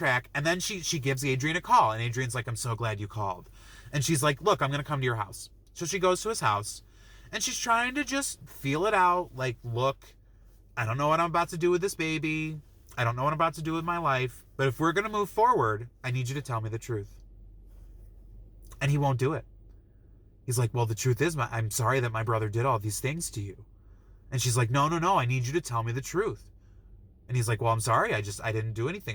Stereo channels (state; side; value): identical; both; correlation 1.00